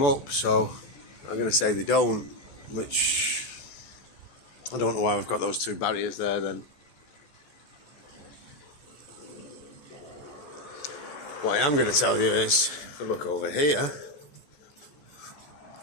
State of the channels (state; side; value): late; right; 14 ms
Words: up, so I'm going to say they don't, which I don't know why we've got those two barriers there then. What I am going to tell you is, if I look over here,